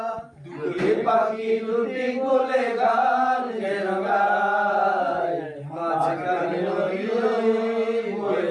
দুটি পাখি দুটি কোলে গান যেন গায়। মাঝখানে নদী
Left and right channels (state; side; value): identical; both; correlation 1.00